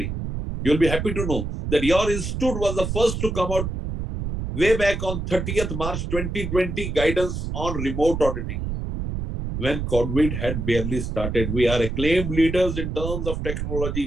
You'll be happy to know that your institute was the first to come out way back on 30th March 2020 guidance on remote auditing. When COVID had barely started, we are acclaimed leaders in terms of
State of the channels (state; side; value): noise; right; rumble, 4 dB below the sound